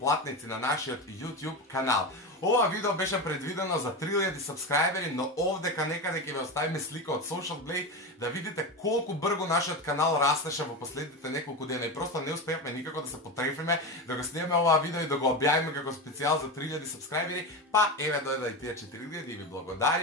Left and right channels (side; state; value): both; normal; correlation 0.19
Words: на нашиот YouTube канал. Ова видео беше предвидено за 3000 сабскрајбери, но овдека некаде ќе ви оставиме слика од Social Blade да видите колку брзо нашиот канал растеше во последните неколку дена и просто не успеавме никако да се потрефиме да го снимаме ова видео и да го објавиме како специјал за 3000 сабскрајбери, па еве дојде и тие 4000 и ви